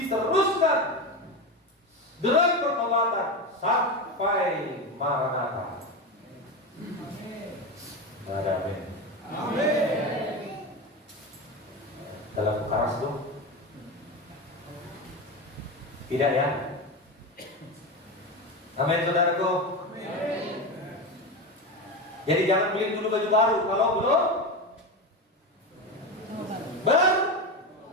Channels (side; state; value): both; normal; correlation 0.19